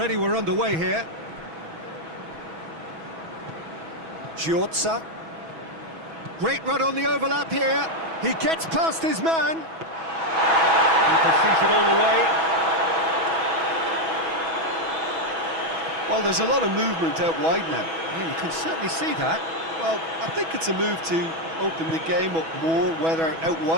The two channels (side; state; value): left; late; 6.1 ms